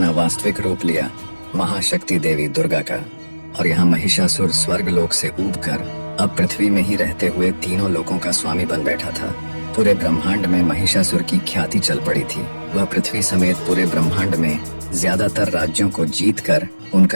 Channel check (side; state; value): both; inverted; correlation -1.00